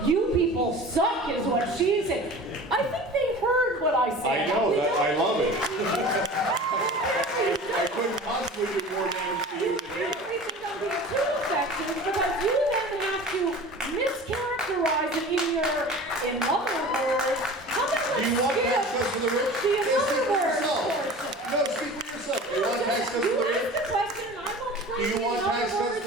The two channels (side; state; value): both; normal; correlation 0.39